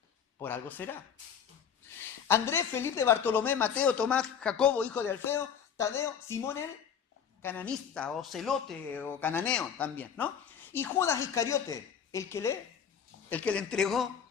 Por algo será. Andrés, Felipe, Bartolomé, Mateo, Tomás, Jacobo, hijo de Alfeo, Tadeo, Simón el cananista, o celote, o cananeo también, ¿no? Y Judas Iscariote, el que le entregó,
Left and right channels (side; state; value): right; quieter; 7.7 dB